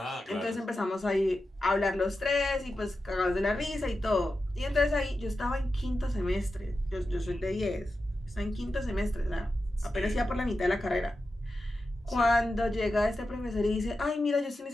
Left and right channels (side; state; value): both; normal; correlation 0.91